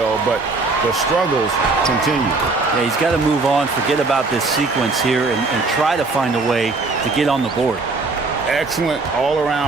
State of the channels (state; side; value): quieter; left; 3.7 dB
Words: but the struggles continue. Yeah, he's got to move on, forget about this sequence here, and try to find a way to get on the board. Excellent